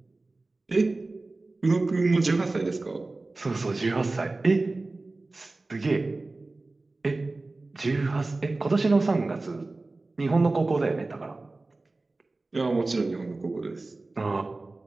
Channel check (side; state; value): left; quieter; 3.2 dB